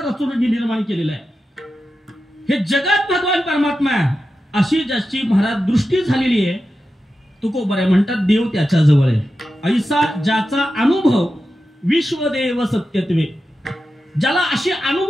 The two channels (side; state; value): both; normal; correlation 0.91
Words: रचून निर्माण केलेलं आहे हे जगात भगवान परमात्मा अशी ज्याची महाराज दृष्टी झालेली आहे तुकोबाराय म्हणतात देव त्याच्या जवळ आहे ऐसा ज्याचा अनुभव विश्वदेव सत्यत्वे ज्याला अशी